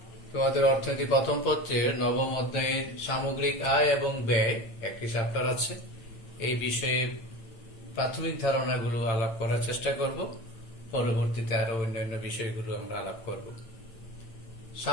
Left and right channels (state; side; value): late; right; 8.8 ms